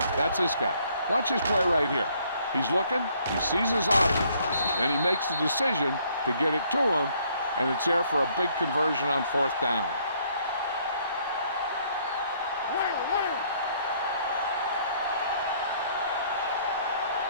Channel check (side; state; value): both; inverted; correlation -0.65